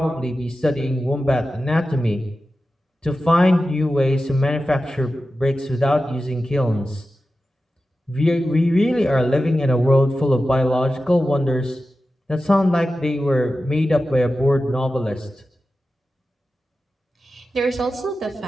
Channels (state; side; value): normal; both; correlation 0.93